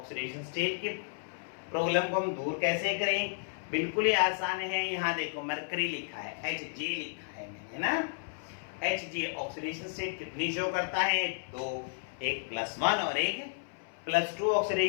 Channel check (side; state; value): right; silent; 56 dB below the other